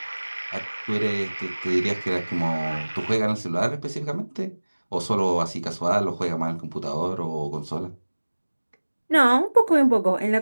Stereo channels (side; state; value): both; inverted; correlation -1.00